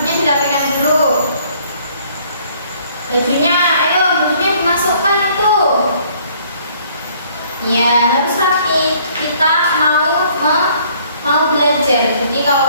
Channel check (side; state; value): both; inverted; correlation -0.61